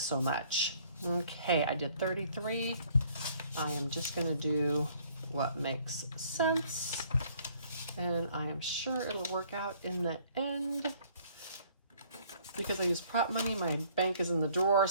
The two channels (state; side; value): inverted; both; correlation -0.60